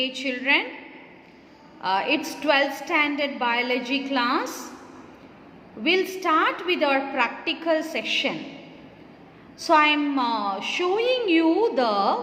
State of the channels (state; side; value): identical; both; correlation 1.00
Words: children. It's 12th standard biology class. We'll start with our practical section. So I'm showing you